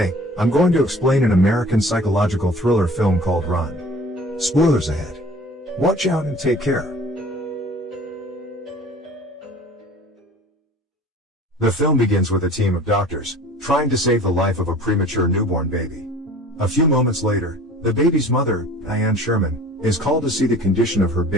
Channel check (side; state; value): both; normal; correlation 0.46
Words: I'm going to explain an American psychological thriller film called Run. Spoilers ahead. Watch out and take care. The film begins with a team of doctors trying to save the life of a premature newborn baby. A few moments later, the baby's mother, Diane Sherman, is called to see the condition of her